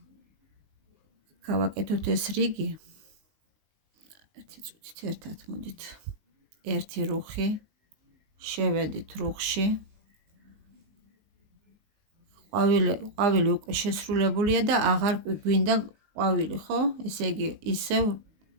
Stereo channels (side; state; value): left; late; 19 ms